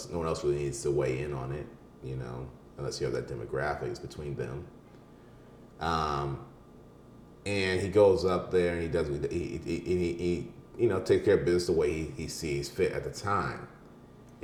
else really needs to weigh in on it, unless you have that demographics between them. And he goes up there and he does he takes care of business the way he sees fit at the time.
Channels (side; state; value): both; identical; correlation 1.00